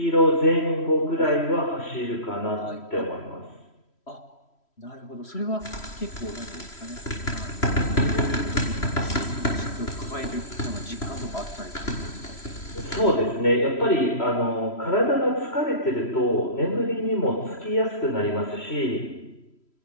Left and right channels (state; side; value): late; right; 3.1 ms